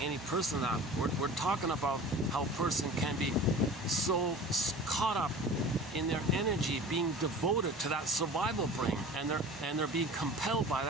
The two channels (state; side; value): normal; both; correlation 0.39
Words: any person that. We're talking about how a person can be so caught up in their energy, being devoted to that survival brain, and they're being compelled by